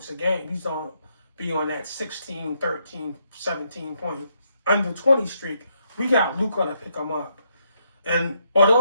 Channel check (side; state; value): both; inverted; correlation -0.77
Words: a game. He's going to be on that 16, 13, 17 point under 20 streak. We got Luka to pick him up. And are